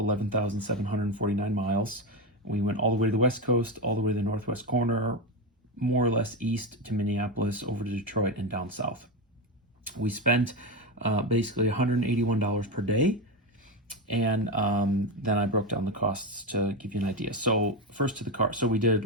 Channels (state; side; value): normal; both; correlation 0.14